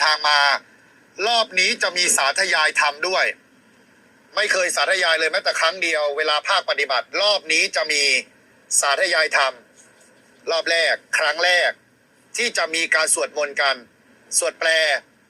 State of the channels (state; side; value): identical; both; correlation 1.00